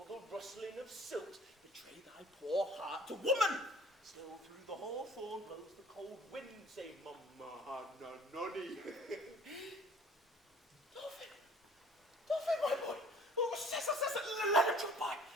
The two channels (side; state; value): both; normal; correlation 0.50